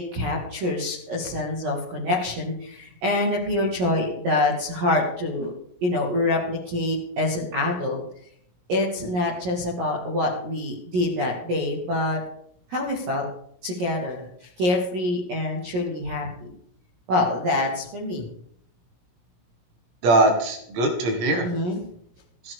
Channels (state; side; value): late; left; 17 ms